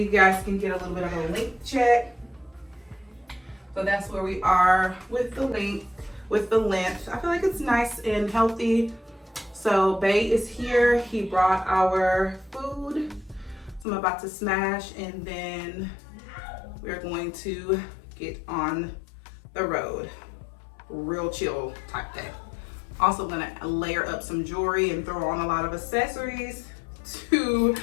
guys can get a little bit of a length check. So that's where we are with the length. I feel like it's nice and healthy. So Bay is here. He brought our food. So I'm about to smash, and then we're going to get on the road. real chill type day. Also gonna layer up some jewelry and throw on a lot of accessories to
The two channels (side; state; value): right; drops out; at 13.9 s